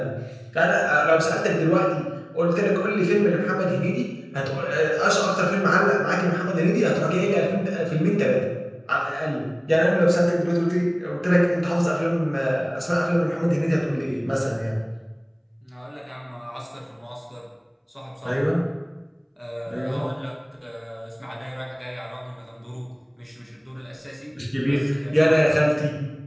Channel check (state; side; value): identical; both; correlation 1.00